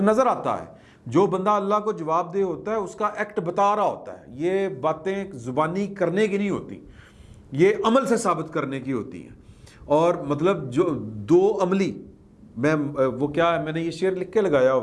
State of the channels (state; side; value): identical; both; correlation 1.00